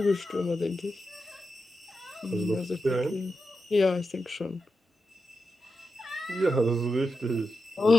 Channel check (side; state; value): both; normal; correlation 0.89